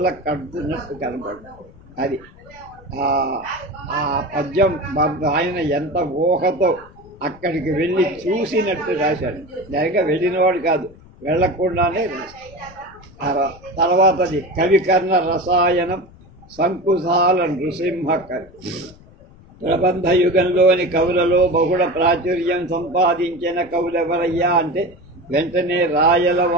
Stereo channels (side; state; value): left; noise; rumble, 23 dB below the sound